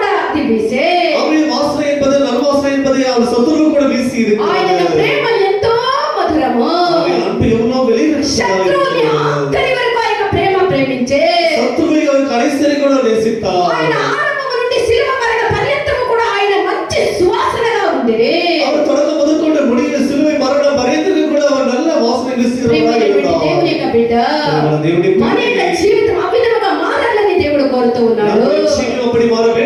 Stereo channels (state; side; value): identical; both; correlation 1.00